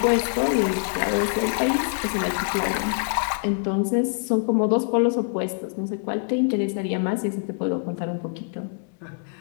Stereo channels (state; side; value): silent; right; 62 dB below the other